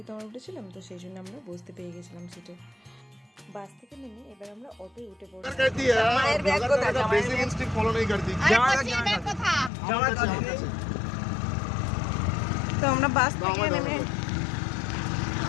তো আমরা উঠেছিলাম, তো সেই জন্য আমরা বসতে পেয়ে গেছিলাম সিটে। বাস থেকে নেমে এবার আমরা অটোয় উঠে পড়লাম। তো আমরা বাস থেকে নেমে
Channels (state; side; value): drops out; right; at 9.7 s